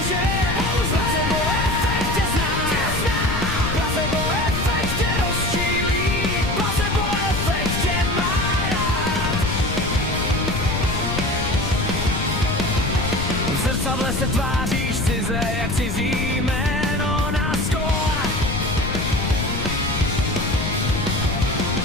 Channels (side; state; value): left; noise; rumble, 3 dB below the sound